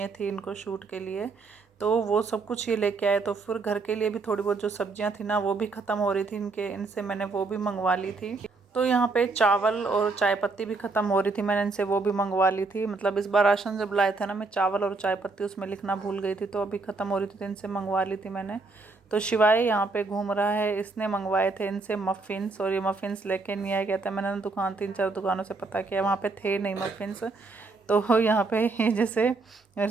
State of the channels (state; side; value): quieter; left; 3.8 dB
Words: थी इनको शूट के लिए, तो वो सब कुछ ये लेके आए। तो फिर घर के लिए भी थोड़ी बहुत जो सब्जियां थी ना वो भी ख़त्म हो रही थी इनसे मैंने वो भी मंगवा ली थी। तो यहाँ पे चावल और चाय पत्ती भी ख़त्म हो रही थी, मैंने इनसे वो भी मंगवा ली थी। मतलब इस बार राशन जब लाए थे ना, मैं चावल और चाय पत्ती उसमें लिखना भूल गई थी, तो अभी ख़त्म हो रही थी तो इनसे मंगवा ली थी मैंने। तो शिवाय यहाँ पे घूम रहा है, इसने मंगवाए थे इनसे मफ़िन्स, और ये मफ़िन्स लेके नहीं आया। कहता है मैंने ना दुकान 3-4 दुकानों से पता किया, वहाँ पे थे नहीं मफ़िन्स। तो यहाँ पे जैसे मेरे